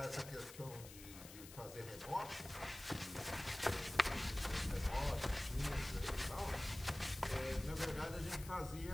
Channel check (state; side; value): noise; left; hiss, 14 dB below the sound